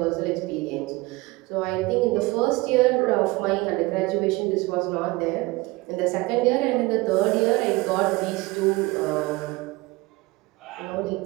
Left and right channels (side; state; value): left; quieter; 22.4 dB